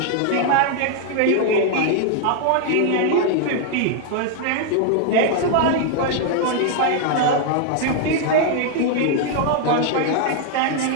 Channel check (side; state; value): both; different; correlation 0.00